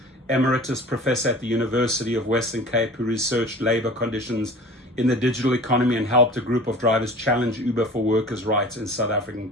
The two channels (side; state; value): both; normal; correlation 0.41